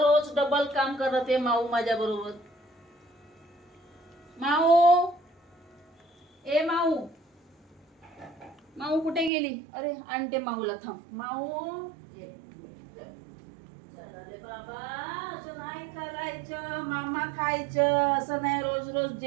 डबल काम करत आहे माऊ माझ्या बरोबर. माऊ, ए माऊ, माऊ कुठे गेली? अरे आणते माऊला, थांब माऊ. चला रे बाबा, असं नाही करायचं, मामा खायचं, असं नाही रोज रोज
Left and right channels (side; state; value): left; drops out; at 9.3 s